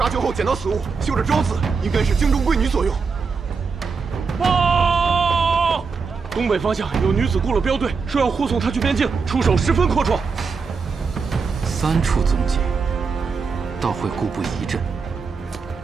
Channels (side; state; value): left; quieter; 5.1 dB